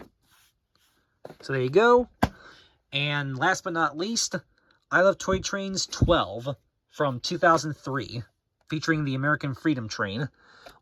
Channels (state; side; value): identical; both; correlation 1.00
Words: So there you go. And last but not least, I Love Toy Trains 12 from 2003, featuring the American Freedom Train.